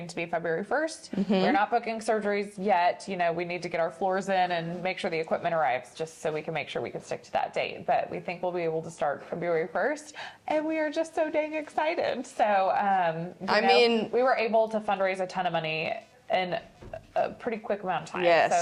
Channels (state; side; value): identical; both; correlation 1.00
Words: to be February 1st. We're not booking surgeries yet. We need to get our floors in and make sure the equipment arrives, just so we can make sure we can stick to that date. But we think we'll be able to start February 1st, and we are just so dang excited. So we were able to fundraise a ton of money in a pretty quick amount of time. Yes.